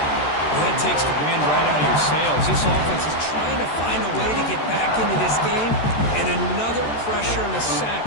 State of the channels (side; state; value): right; late; 13 ms